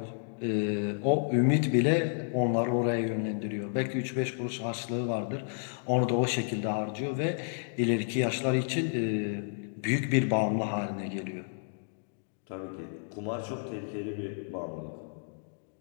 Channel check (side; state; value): right; silent; digital silence